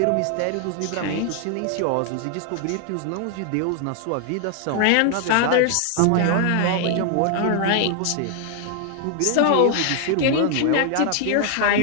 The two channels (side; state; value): both; different; correlation 0.00